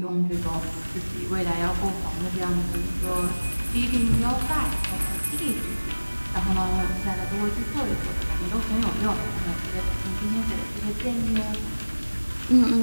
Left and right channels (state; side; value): inverted; both; correlation -1.00